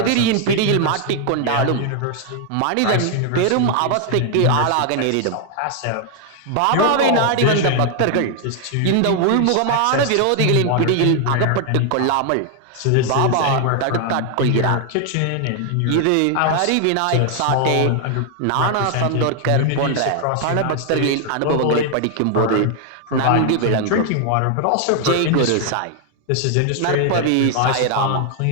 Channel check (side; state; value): both; different; correlation 0.00